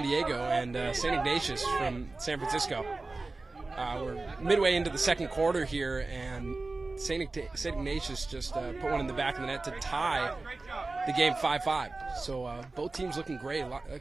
Diego and St. Ignatius from San Francisco. We're midway into the second quarter here, and St. Ignatius just put one in the back of the net to tie the game 5-5. So both teams looking great. A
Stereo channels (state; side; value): quieter; left; 3.4 dB